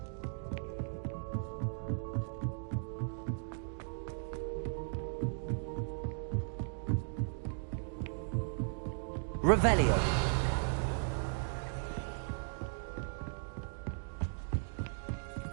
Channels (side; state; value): left; silent; digital silence